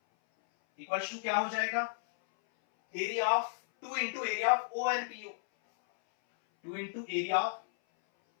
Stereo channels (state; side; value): silent; right; 56 dB below the other